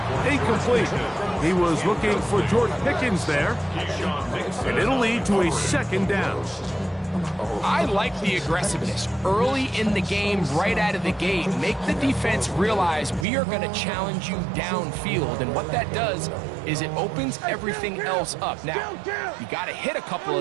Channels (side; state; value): left; drops out; at 13.2 s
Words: incomplete. He was looking for George Pickens there. And it'll lead to a second down. I like the aggressiveness early in the game, right out of the gate. Make the defense realize we are going to challenge you downfield, and what that does is it opens everything else up. Now, you got to hit a couple